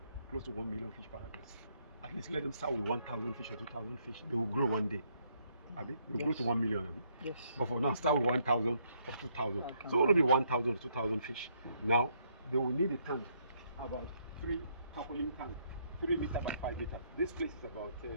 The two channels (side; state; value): both; inverted; correlation -0.71